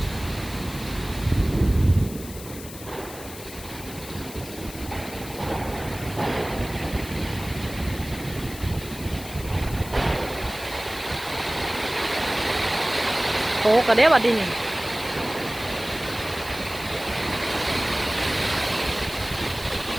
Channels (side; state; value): left; noise; hiss, 14 dB below the sound